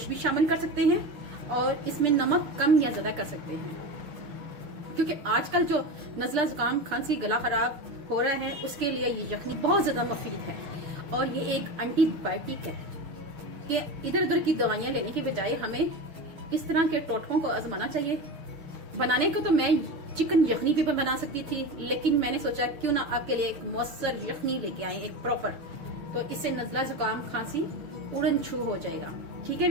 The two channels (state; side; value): late; left; 6.8 ms